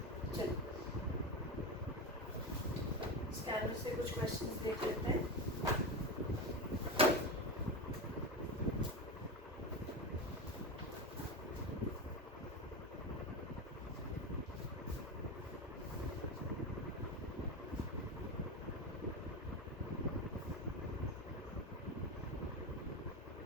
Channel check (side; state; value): both; normal; correlation 0.19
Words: चलो स्कैनर से कुछ क्वेश्चंस देख लेते हैं।